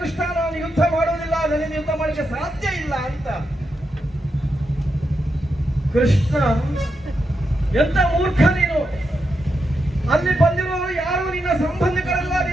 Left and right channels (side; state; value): both; normal; correlation 0.85